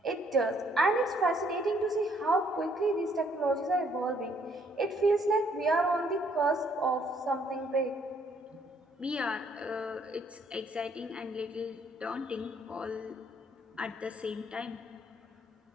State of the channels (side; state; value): both; normal; correlation 0.66